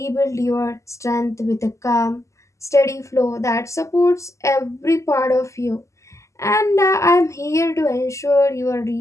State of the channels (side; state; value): right; late; 0.15 ms